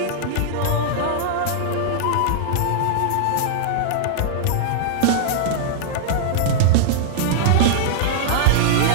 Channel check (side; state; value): both; different; correlation -0.02